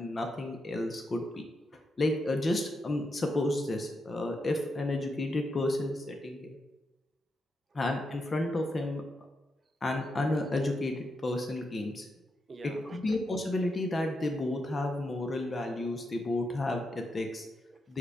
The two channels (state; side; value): normal; both; correlation 0.84